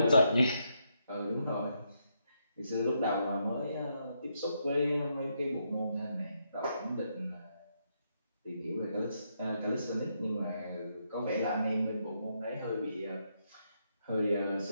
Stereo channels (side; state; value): both; inverted; correlation -0.79